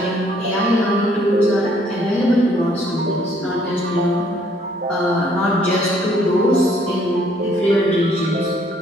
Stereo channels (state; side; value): normal; both; correlation 0.65